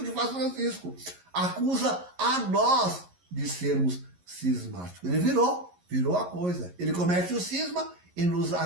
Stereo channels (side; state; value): left; late; 11 ms